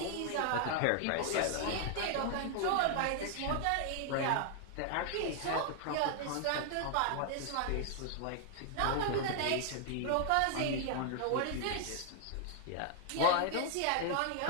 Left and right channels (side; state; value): both; different; correlation 0.00